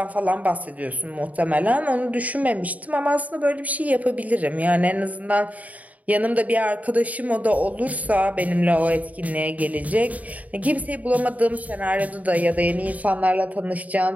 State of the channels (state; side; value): late; left; 0.072 ms